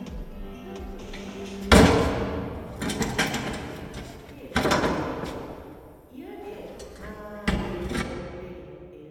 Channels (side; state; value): both; identical; correlation 1.00